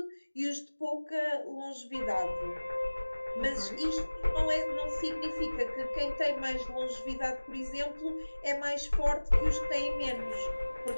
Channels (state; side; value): inverted; both; correlation -1.00